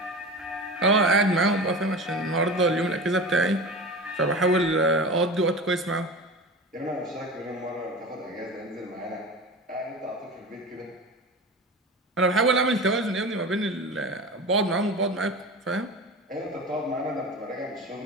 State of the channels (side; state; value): both; normal; correlation 0.31